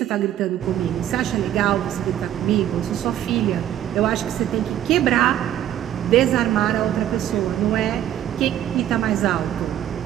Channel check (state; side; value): quieter; left; 11.6 dB